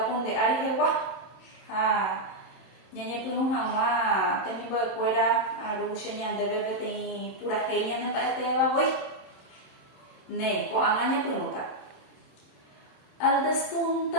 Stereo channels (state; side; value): late; right; 27 ms